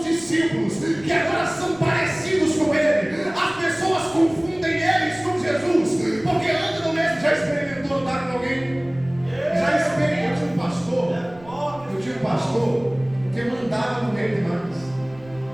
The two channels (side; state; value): right; noise; rumble, 23 dB below the sound